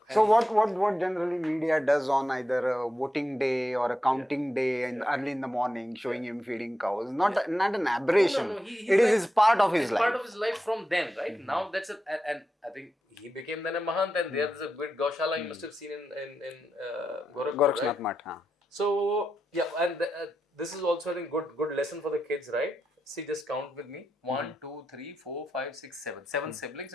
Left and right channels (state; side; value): normal; both; correlation 0.87